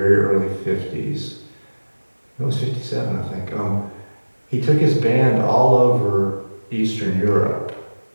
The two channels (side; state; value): both; inverted; correlation -1.00